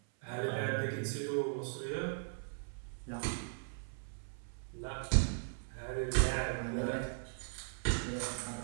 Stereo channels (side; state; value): left; silent; 52 dB below the other